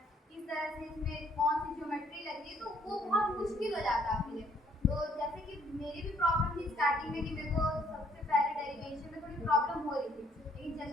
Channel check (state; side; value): normal; both; correlation 0.65